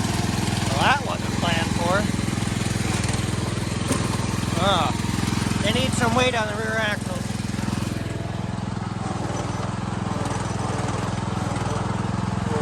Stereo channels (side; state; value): both; identical; correlation 1.00